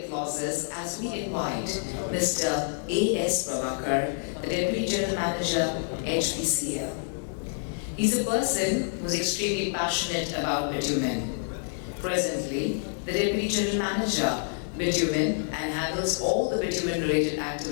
applauses as we invite Mr. S.Prabhakar, the Deputy General Manager, HPCL. He's a person who's extremely passionate about bitumen. Presently, the Deputy General Manager, Bitumen, and handles all the bitumen-related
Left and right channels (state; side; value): silent; right; digital silence